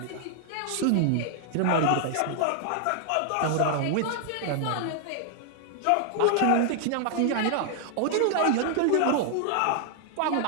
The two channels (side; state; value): both; different; correlation 0.00